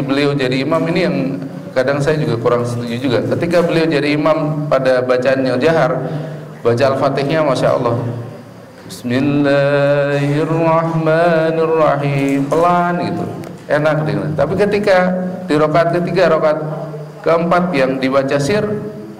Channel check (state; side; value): identical; both; correlation 1.00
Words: jadi imam, ini yang kadang saya juga kurang setuju juga. Ketika beliau jadi imam pada bacaan yang jahar, baca Al-Fatihahnya Masya Allah, Bismillahirrahmanirrahim, pelan gitu, enak dengar. Tapi ketika di rakaat ketiga, rakaat keempat yang dibaca sir,